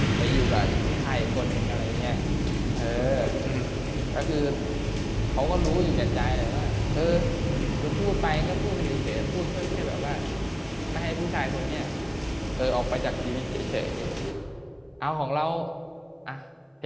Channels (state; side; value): identical; both; correlation 1.00